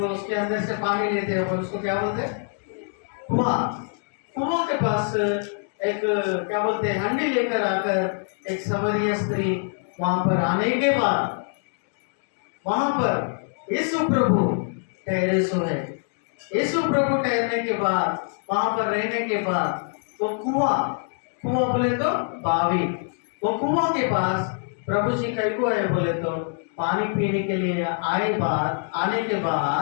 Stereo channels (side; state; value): right; silent; 62 dB below the other